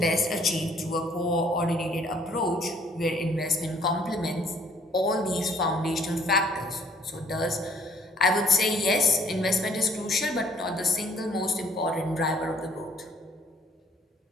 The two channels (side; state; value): both; normal; correlation 0.61